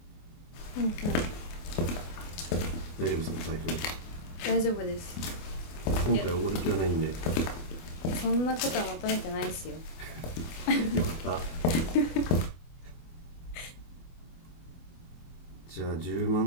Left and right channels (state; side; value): late; right; 24 ms